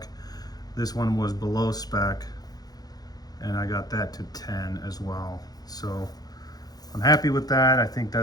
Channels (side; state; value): right; late; 0.19 ms